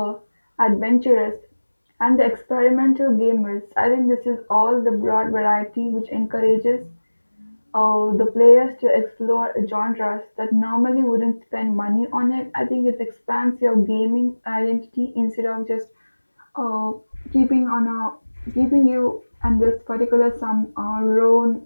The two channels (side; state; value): both; inverted; correlation -1.00